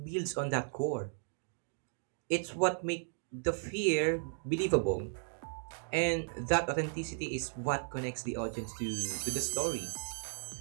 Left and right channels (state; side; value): silent; left; digital silence